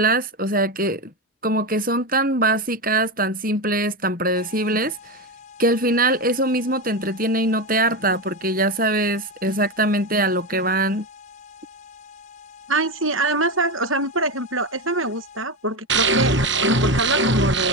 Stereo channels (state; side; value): normal; both; correlation 0.16